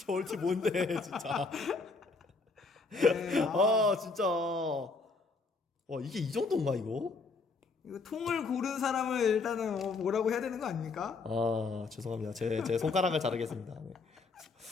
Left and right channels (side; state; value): right; quieter; 4.1 dB